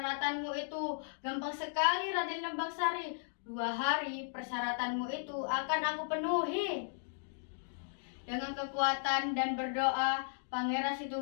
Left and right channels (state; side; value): silent; right; digital silence